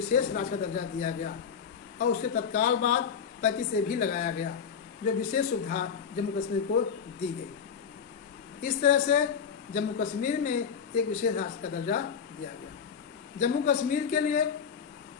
राज्य का दर्जा दिया गया और उसके तत्काल बाद 35 से भी लगाया गया, जो विशेष सुविधा जम्मू कश्मीर को दी गई। इस तरह से जम्मू कश्मीर में एक विशेष राज्य का दर्जा दिया गया। जम्मू कश्मीर के लिए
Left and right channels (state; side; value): quieter; right; 6.9 dB